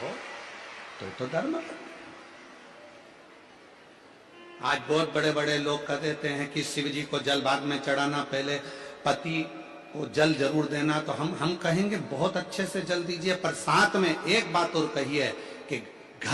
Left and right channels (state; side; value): identical; both; correlation 1.00